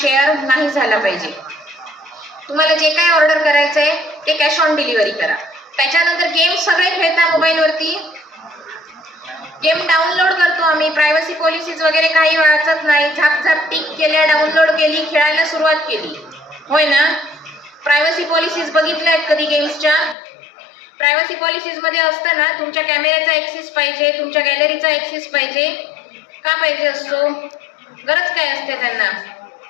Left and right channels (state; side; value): drops out; right; at 20.2 s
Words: नाही झाला पाहिजे. तुम्हाला जे काय ऑर्डर करायचंय ते कॅश ऑन डिलिव्हरी करा. त्याच्यानंतर गेम सगळे खेळता मोबाईलवरती, गेम डाउनलोड करतो आम्ही, प्रायव्हसी पॉलिसीज वगैरे काही वाचत नाही, झाप टिक केल्या, डाउनलोड केली, खेळायला सुरुवात केली, होय ना? प्रायव्हसी पॉलिसीज बघितल्या आहेत कधी गेम्सच्या? प्रायव्हसी पॉलिसीज मध्ये असतं ना तुमच्या कॅमेऱ्याचा ऍक्सेस पाहिजे, तुमच्या गॅलरीचा ऍक्सेस पाहिजे. का पाहिजे असतो? गरज काय असते त्यांना?